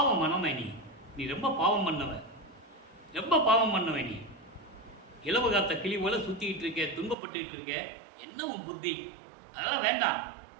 மனமே, நீ ரொம்ப பாவம் பண்ணவ, ரொம்ப பாவம் பண்ணவ. நீ இலவு காத்த கிளி போல சுத்திக்கிட்டு இருக்க, துன்பப்பட்டுக்கிட்டு இருக்க, என்னவும் புத்தி. அதெல்லாம் வேண்டாம்,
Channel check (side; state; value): left; drops out; at 7.2 s